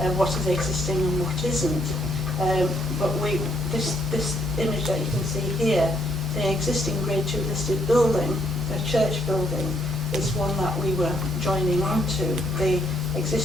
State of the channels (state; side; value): normal; both; correlation 0.72